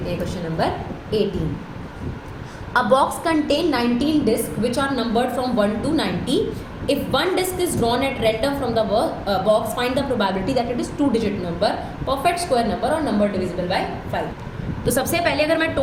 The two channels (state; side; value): identical; both; correlation 1.00